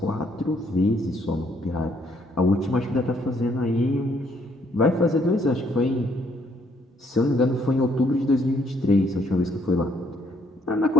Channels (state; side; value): normal; both; correlation 0.69